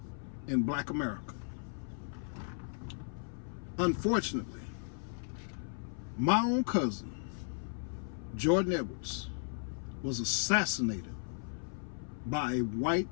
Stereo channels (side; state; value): right; silent; 54 dB below the other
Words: in Black America. Unfortunately, my own cousin, Jordan Edwards, was assassinated by a